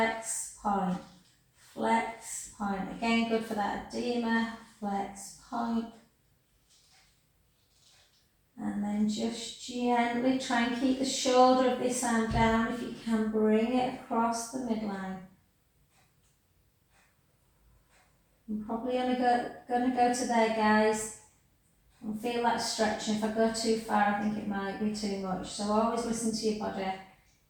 point. Flex, point. Again, good for that edema. Flex, point. And then just gently try and keep the shoulder of this arm down. If you can, bring it across the midline. I'm probably only going to go to there, guys. And feel that stretching. If I go too far, I think it might be too much. So always listen to your body,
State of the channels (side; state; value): both; identical; correlation 1.00